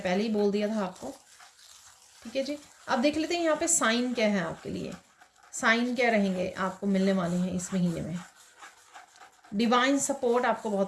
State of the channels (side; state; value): both; identical; correlation 1.00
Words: पहले ही बोल दिया था आपको। ठीक है जी। अब देख लेते हैं यहाँ पे साइन क्या है आपके लिए। साइन क्या रहेंगे आपको मिलने वाले हैं इस महीने में। डिवाइन सपोर्ट आपको